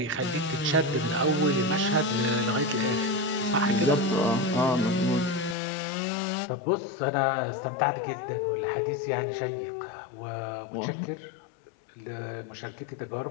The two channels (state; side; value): drops out; right; at 5.6 s